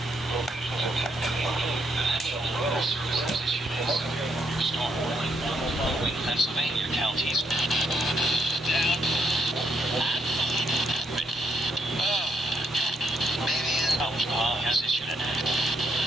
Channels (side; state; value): both; normal; correlation 0.74